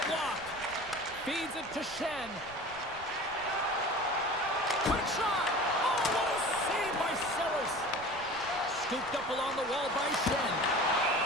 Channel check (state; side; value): noise; right; rumble, 19 dB below the sound